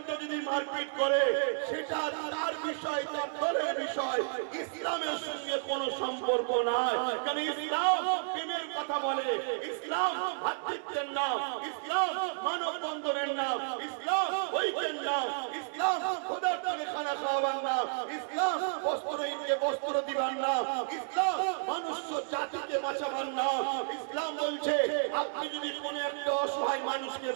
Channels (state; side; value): silent; left; digital silence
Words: যদি মারপিট করে সেটা তার বিষয়, তার দলের বিষয়, ইসলামের সঙ্গে কোনো সম্পর্ক নাই। কারণ ইসলাম প্রেমের কথা বলে, ইসলাম ভাতৃত্বের নাম, ইসলাম মানব বন্ধনের নাম, ইসলাম ঐক্যের নাম, ইসলাম খোদার তলে খানা খাওয়াবার নাম, ইসলাম বস্ত্রহীনকে বস্ত্র দিবার নাম, ইসলাম মানুষ জাতিকে বাঁচাবার নাম। ইসলাম বলছে আপনি যদি কোন একটা অসহায় মানুষকে